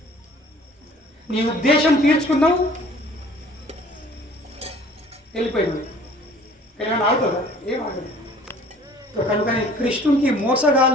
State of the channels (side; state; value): both; normal; correlation 0.52